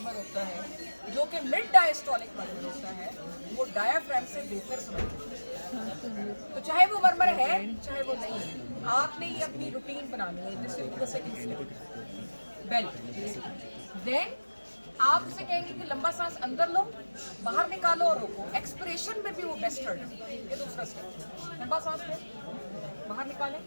होता है, जो कि मिड डायस्टोलिक मर्मर होता है, वो डायाफ्राम से बेहतर सुनता है। तो चाहे वो मर्मर है चाहे वो नहीं है, आपने ये अपनी रूटीन बनानी है। This will be the second step, belt. Then आप उसे कहेंगे कि लंबा सांस अंदर लो, बाहर निकालो और रोको। एक्सप्रेशन में भी वो बेस्ट टर्न है। ये दूसरा स्टेप, लंबा सांस ले, बाहर निकाले,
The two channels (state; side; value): inverted; both; correlation -1.00